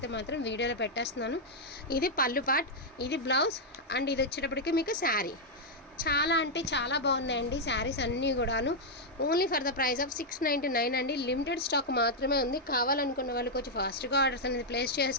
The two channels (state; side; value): normal; both; correlation -0.03